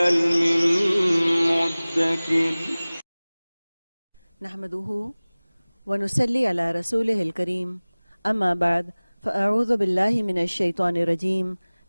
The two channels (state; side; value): inverted; both; correlation -1.00